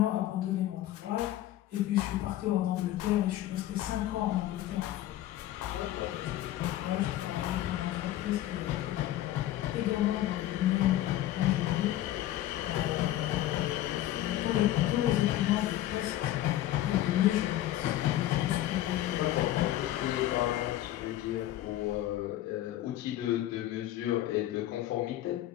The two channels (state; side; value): quieter; right; 13.9 dB